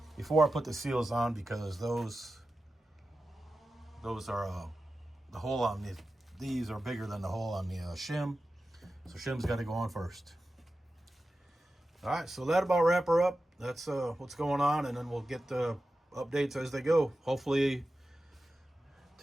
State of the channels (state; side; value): normal; both; correlation 0.93